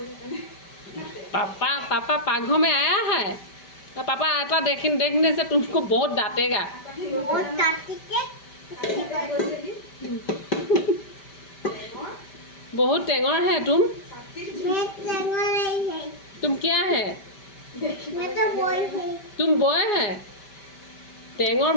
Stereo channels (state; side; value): late; right; 5.1 ms